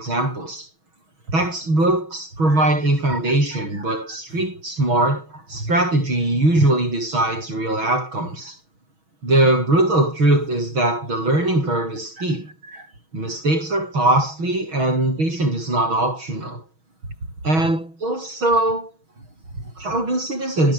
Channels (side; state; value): left; late; 6.3 ms